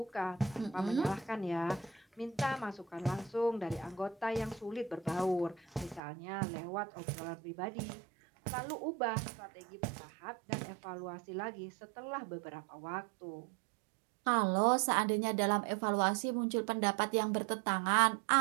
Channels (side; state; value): left; drops out; at 6.0 s